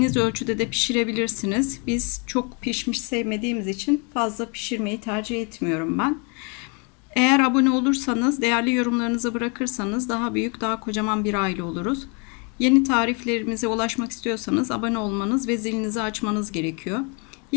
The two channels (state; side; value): quieter; right; 34.6 dB